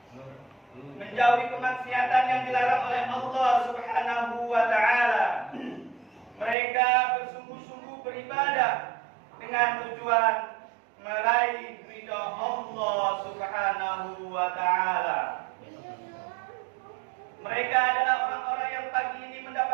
menjauhi kemaksiatan yang dilarang oleh Allah Subhanahu wa ta'ala. Mereka bersungguh-sungguh beribadah dengan tujuan meraih ridha Allah Subhanahu wa ta'ala. Mereka adalah orang-orang yang pagi ini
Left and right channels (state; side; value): drops out; left; at 6.6 s